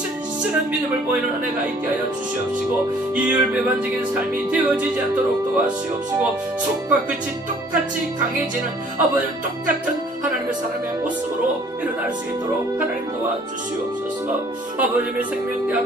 믿음을 보이는 은혜가 있게 하여 주시옵시고, 이율배반적인 삶이 되어지지 않도록 도와주시옵시고, 속과 끝이 똑같이 강해지는 아버지 똑같은 하나님의 사람의 모습으로 일어날 수 있도록 하나님 도와주시옵소서. 아버지의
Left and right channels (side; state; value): both; normal; correlation 0.56